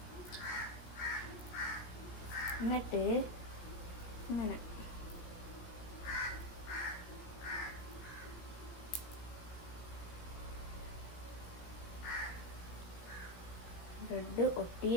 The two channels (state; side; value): late; right; 17 ms